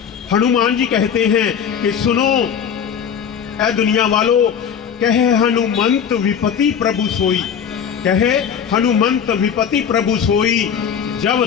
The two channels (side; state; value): right; quieter; 7.7 dB